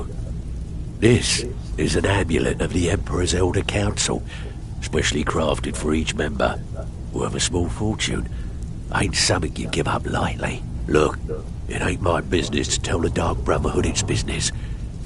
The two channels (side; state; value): both; identical; correlation 1.00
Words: This is an amulet of the Emperor's Elder Council, specially crafted for each member. Worth a small fortune. Ain't something you give up lightly. Look, it ain't my business to tell the Dark Brotherhood its business,